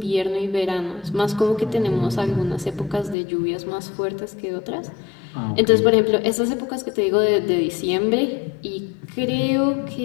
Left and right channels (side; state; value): right; drops out; at 3.2 s